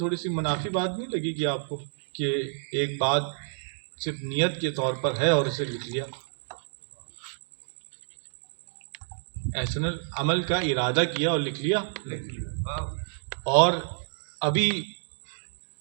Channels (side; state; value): left; silent; digital silence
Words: سی منافی بات نہیں لگے گی آپ کو کہ ایک بات صرف نیت کے طور پر ہے اور اسے لکھ لیا؟ احسن عمل کا ارادہ کیا اور لکھ لیا، اور ابھی